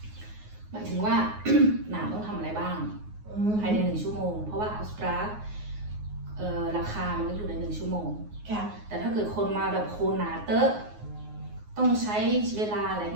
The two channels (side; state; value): left; late; 9.5 ms